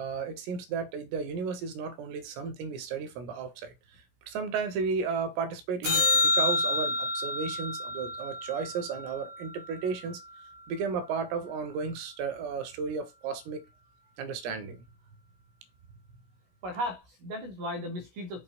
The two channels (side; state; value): left; late; 16 ms